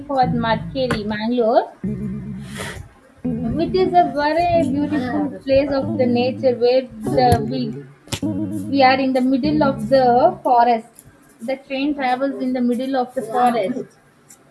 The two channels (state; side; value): identical; both; correlation 1.00